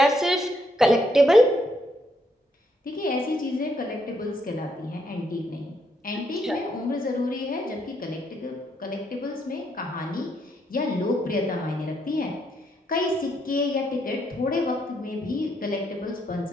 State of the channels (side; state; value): both; normal; correlation 0.75